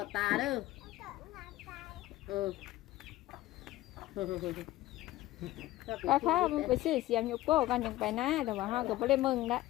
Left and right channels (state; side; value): quieter; right; 16.3 dB